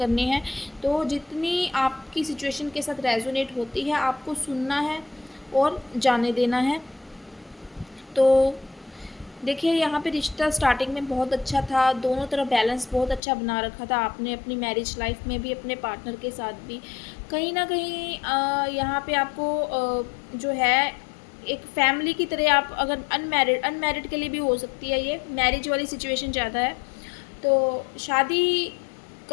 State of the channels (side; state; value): right; drops out; at 13.2 s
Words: हैं। तो जितनी आपकी सिचुएशन के साथ रेजोनेट होती है आपको सुनना है और जाने देना है। तो देखिए यहाँ पे रिश्ता स्टार्टिंग में बहुत अच्छा था, दोनों तरफ बैलेंस बहुत अच्छा बना रखा था आपने अपनी मैरिज लाइफ में भी, अपने पार्टनर के साथ भी। कहीं ना कहीं यहाँ पे आपको जो है एक फैमिली की तरह, आप अगर अनमैरिड के लिए भी हो सकती है, ये मैरिज वाली सिचुएशन ज़्यादा है। तो शादी